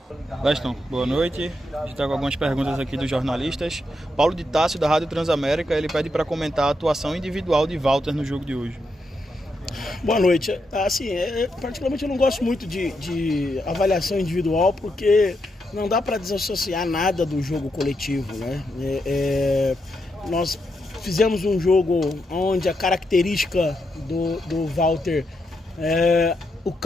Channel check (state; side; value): normal; both; correlation 0.82